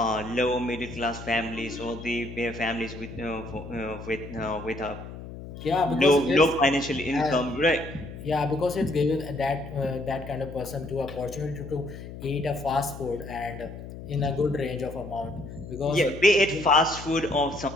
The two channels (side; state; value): left; noise; hum, 12 dB below the sound